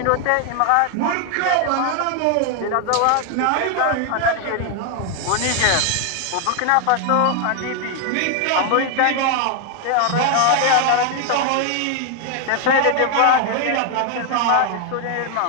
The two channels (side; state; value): both; different; correlation 0.00